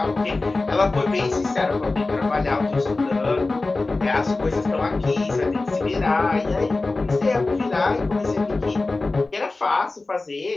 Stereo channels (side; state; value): right; quieter; 3.4 dB